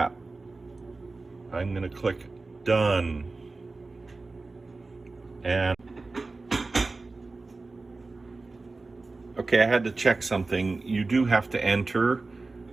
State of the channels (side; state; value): left; quieter; 3.5 dB